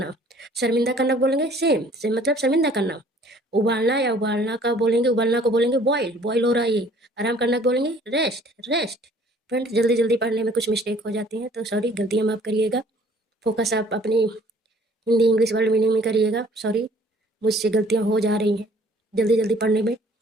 शर्मिंदा करना को बोलेंगे सेम सेम मतलब शर्मिंदा करना। उबालना या उबालना का बोलेंगे उबालना को बोलेंगे बॉयल बॉयल हो रहा है ये। आराम करना को बोलेंगे रेस्ट रेस्ट। फ्रेंड्स जल्दी जल्दी पढ़ने में कुछ मिस्टेक हो जाती हैं तो सॉरी गलतियाँ माफ करिएगा। फोकस आप अपनी हिंदी इंग्लिश वर्ड मीनिंग में करिएगा। सॉरी मुझसे गलतियाँ हो जा रही हैं जल्दी जल्दी पढ़ने में,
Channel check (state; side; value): normal; both; correlation 0.55